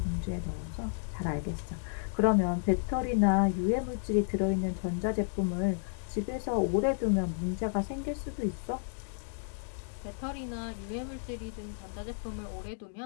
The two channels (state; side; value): silent; right; digital silence